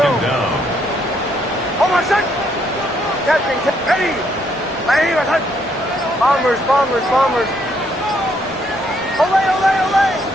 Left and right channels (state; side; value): normal; both; correlation 0.71